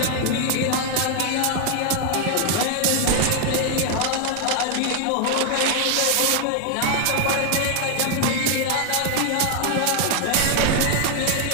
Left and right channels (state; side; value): different; both; correlation 0.00